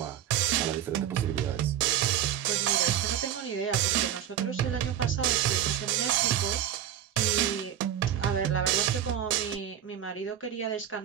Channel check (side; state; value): left; quieter; 10.3 dB